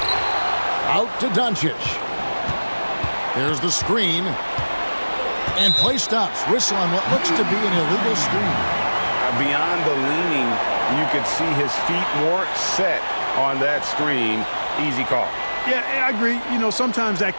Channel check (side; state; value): both; inverted; correlation -1.00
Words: Out to Doncic. There's the screen. And play stops. Whistle on what looks to be an illegal screen. Beyond the leaning, you could see his feet weren't set on that screen. Easy call. Yeah, I agree. You know, sometimes that